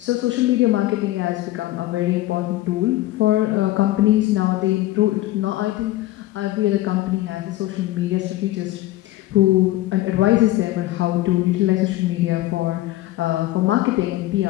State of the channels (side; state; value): right; quieter; 16.5 dB